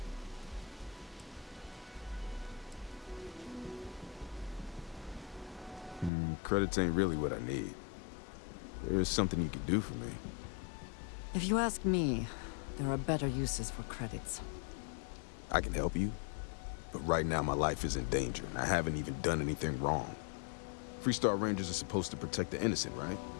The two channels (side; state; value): right; drops out; at 6.1 s